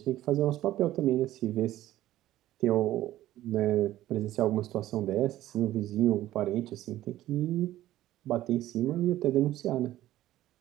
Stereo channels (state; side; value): quieter; left; 14.4 dB